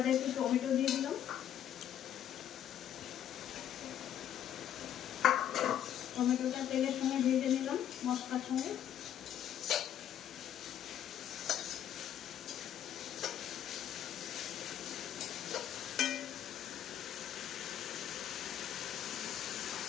একটু টমেটো দিয়ে দিলাম। টমেটোটা তেলের সঙ্গে ভেজে নিলাম মশলার সঙ্গে।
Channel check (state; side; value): quieter; right; 10.4 dB